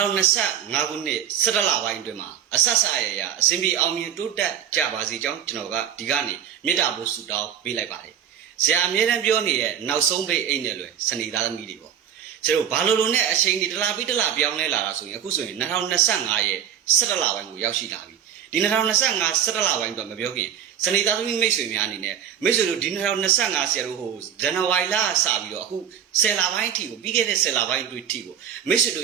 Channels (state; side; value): quieter; left; 9.0 dB